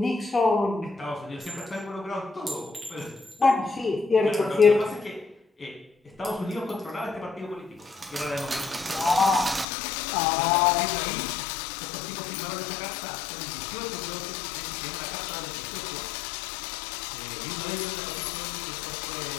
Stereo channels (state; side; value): drops out; right; at 9.7 s